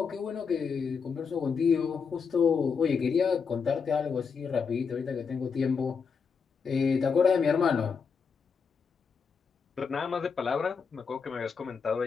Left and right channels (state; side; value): quieter; right; 5.8 dB